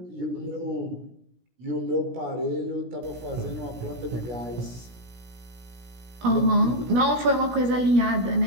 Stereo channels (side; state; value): left; late; 17 ms